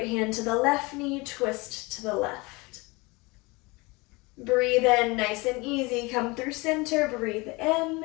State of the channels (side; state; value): right; quieter; 25.1 dB